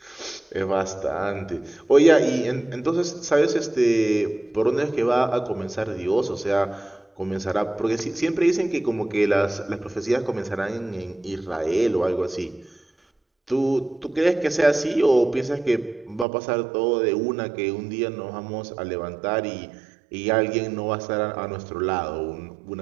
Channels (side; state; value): left; drops out; at 16.2 s